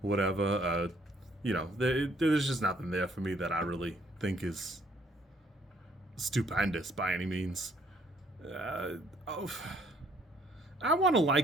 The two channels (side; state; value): both; normal; correlation 0.65